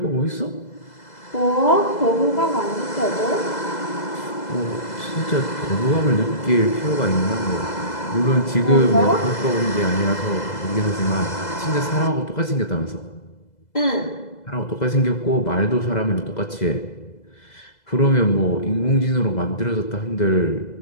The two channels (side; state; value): right; late; 2.0 ms